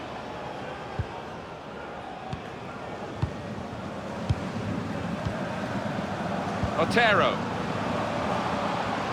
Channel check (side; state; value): both; identical; correlation 1.00